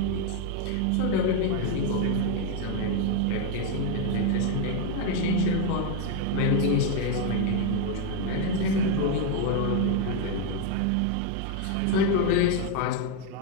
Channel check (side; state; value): both; different; correlation 0.01